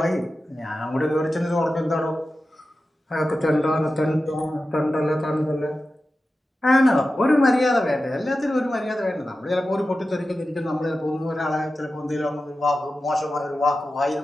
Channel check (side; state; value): both; normal; correlation 0.93